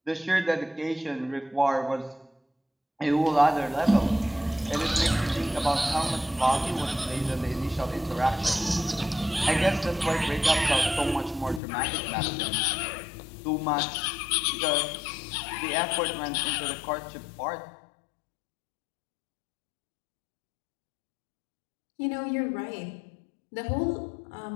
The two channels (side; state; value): right; drops out; at 11.6 s